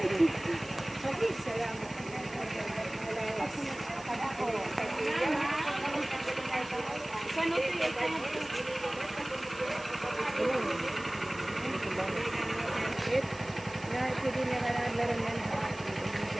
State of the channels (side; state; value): right; noise; hiss, 20 dB below the sound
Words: Salamat. Pwede niya nga naglaran yan.